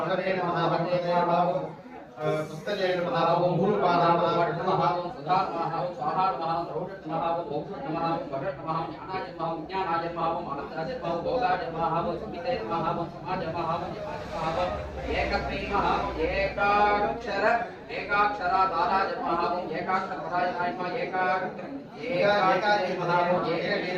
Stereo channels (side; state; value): both; identical; correlation 1.00